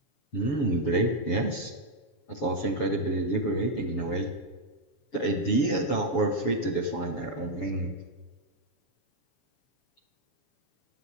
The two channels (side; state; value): right; late; 7.2 ms